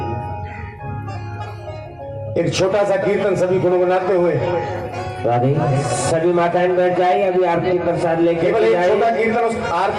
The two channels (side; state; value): both; identical; correlation 1.00